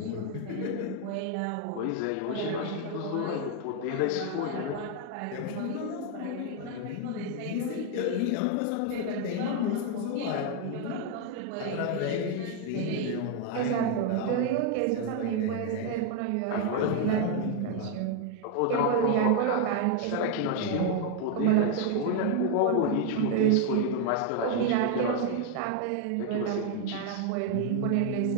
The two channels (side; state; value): both; different; correlation 0.01